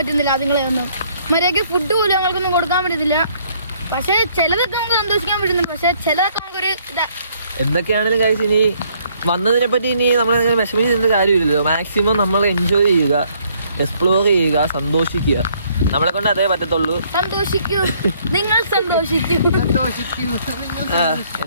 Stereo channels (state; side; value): inverted; both; correlation -0.65